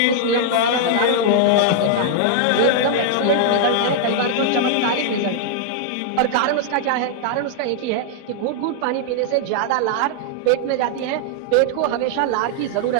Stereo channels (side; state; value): both; different; correlation -0.01